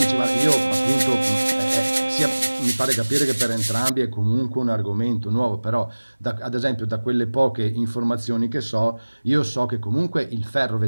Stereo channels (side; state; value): both; inverted; correlation -1.00